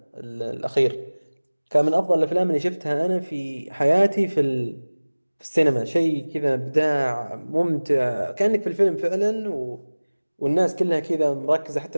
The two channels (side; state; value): both; inverted; correlation -1.00